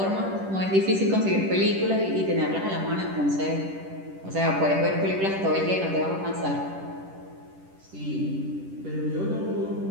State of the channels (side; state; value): left; late; 10 ms